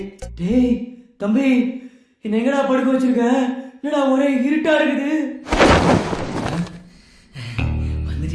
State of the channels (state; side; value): identical; both; correlation 1.00